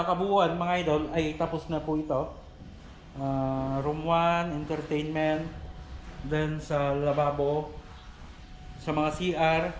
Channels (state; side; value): identical; both; correlation 1.00